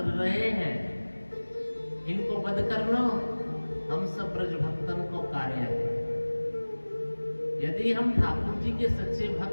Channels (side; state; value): both; inverted; correlation -1.00